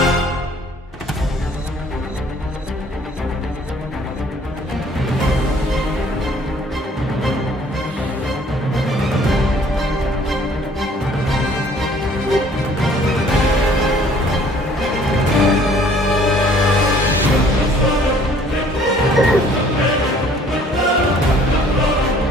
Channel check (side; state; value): both; normal; correlation 0.57